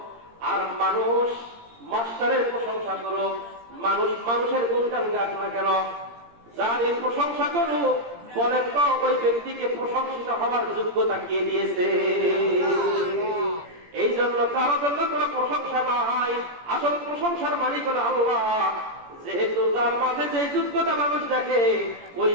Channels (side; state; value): left; late; 17 ms